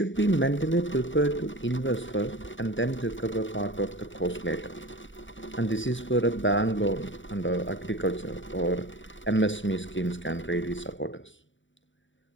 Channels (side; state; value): right; late; 0.55 ms